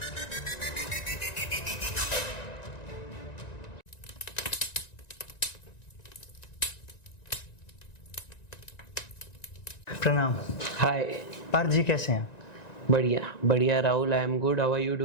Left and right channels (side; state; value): right; late; 1.9 ms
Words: प्रणाम। हाय। पार्थ जी, कैसे हैं? बढ़िया बढ़िया Rahul, I am good, how are you